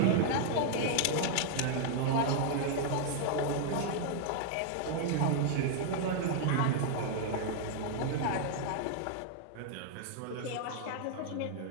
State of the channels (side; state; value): both; different; correlation -0.01